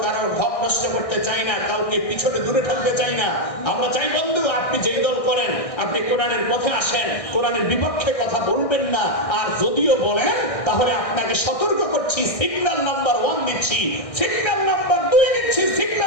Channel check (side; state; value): right; late; 1.6 ms